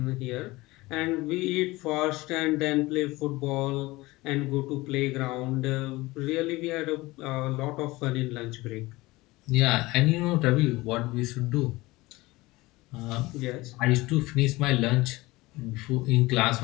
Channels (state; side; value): quieter; right; 20.6 dB